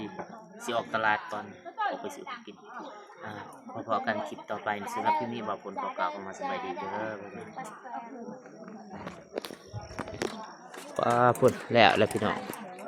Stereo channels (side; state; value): both; identical; correlation 1.00